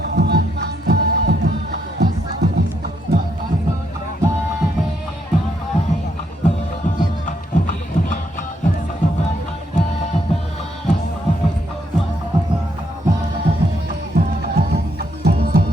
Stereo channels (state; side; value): normal; both; correlation 0.76